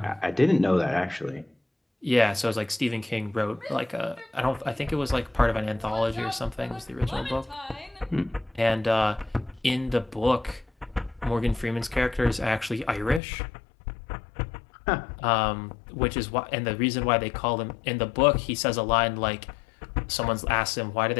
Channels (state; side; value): drops out; right; at 13.2 s